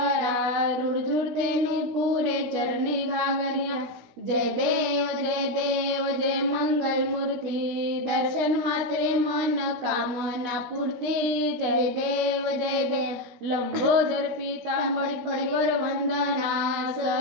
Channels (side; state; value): left; late; 16 ms